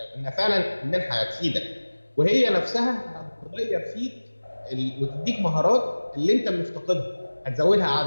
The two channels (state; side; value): inverted; both; correlation -1.00